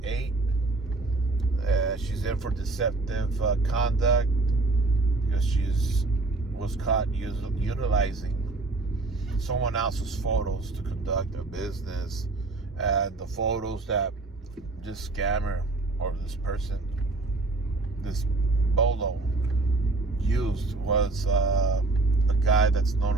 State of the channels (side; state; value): left; quieter; 3.4 dB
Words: She's in for deceptive conduct because was caught utilizing someone else's photos to conduct a business, and the photos that this scammer or this person, this bolo, used was a guy that's